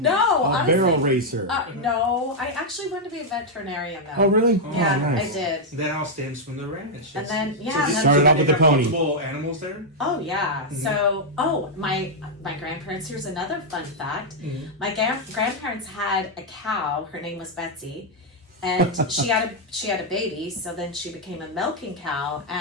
A honestly. barrel racer. No, I actually wanted to be a veterinarian though. Oh, really? Yeah, Oh, nice. I did. that all stems from the ranch. And then So yeah, this- and then, Started off with they the have pony. multiple animals there. oh yeah. So my grandparents. Here's another fun fact. My grandparents had a cow. Her name was Betsy. And she had a baby, so then she became a milking cow,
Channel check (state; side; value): normal; both; correlation -0.03